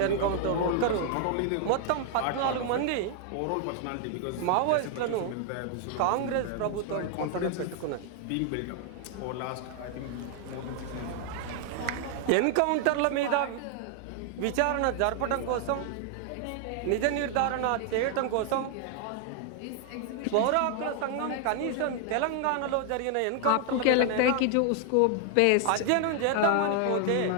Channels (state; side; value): different; both; correlation 0.00